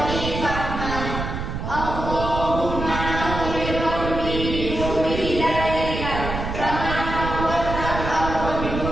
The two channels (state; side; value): noise; right; rumble, 5 dB below the sound